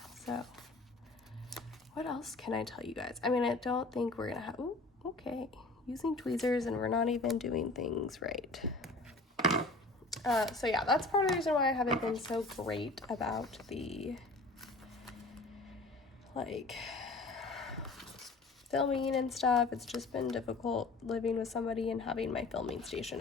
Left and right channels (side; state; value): right; quieter; 3.2 dB